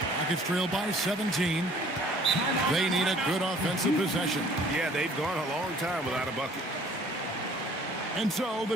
Rockets trail by 17. They need a good offensive possession. Yeah, they've gone a long time without a bucket. And so the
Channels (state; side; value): normal; both; correlation 0.54